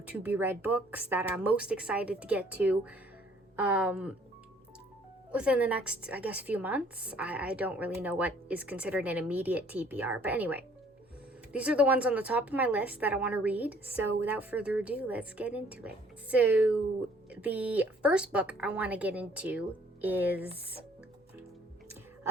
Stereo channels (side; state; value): both; normal; correlation 0.59